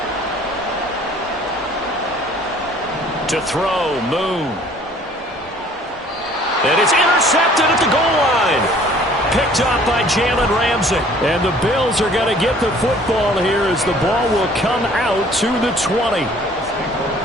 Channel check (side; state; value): both; normal; correlation 0.54